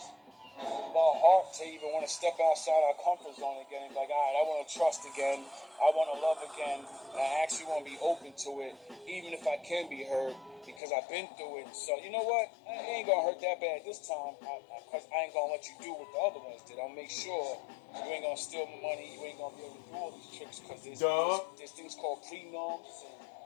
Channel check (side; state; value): right; drops out; at 10.8 s